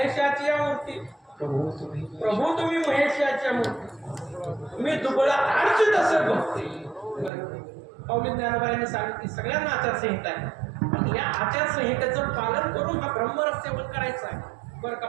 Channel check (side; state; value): left; drops out; at 7.3 s